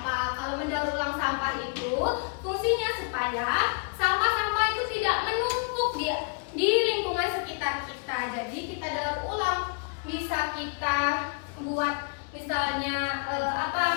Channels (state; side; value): quieter; right; 34.7 dB